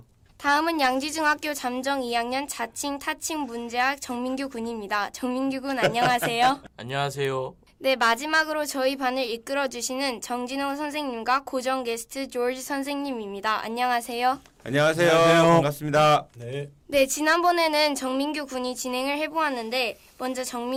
다음은 양지중학교 잠정 2학년 자칭 타칭 문제학 정민규 군입니다. 정민규 군 안녕하세요. 안녕하세요. 네, 마지막으로 저희 반을 이끌어주시는 정진호 선생님과 고정 게스트 조지 선생님입니다. 안녕하세요. 안녕하세요. 반갑습니다. 네, 지난번에는 정민규 군이 진행을 해보았는데 먼저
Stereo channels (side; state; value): both; identical; correlation 1.00